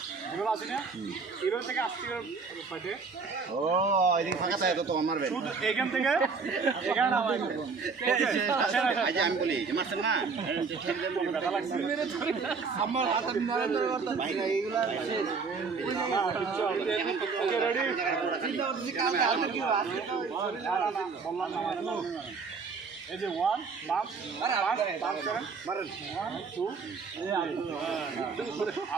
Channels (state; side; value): quieter; left; 4.9 dB